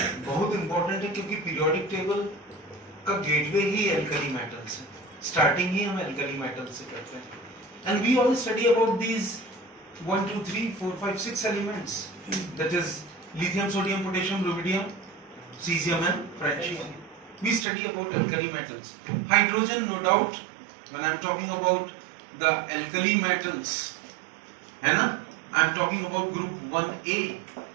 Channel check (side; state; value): left; drops out; at 17.7 s